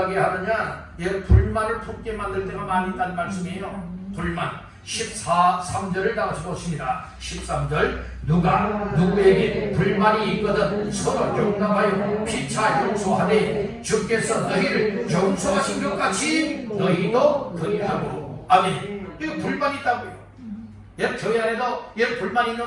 하느냐? 불만을 품게 만들 때가 많이 있다는 말씀이에요. 불만 3절을 다 같이 보십니다. 13절 누가 누구에게 불만이 있거든 서로 용납하여 피차 용서하되 주께서 너희를 용서하신 것 같이 너희도 그리하고. 아멘. 이거 불만이 있다고요. 교회 안에도 불만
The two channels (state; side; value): identical; both; correlation 1.00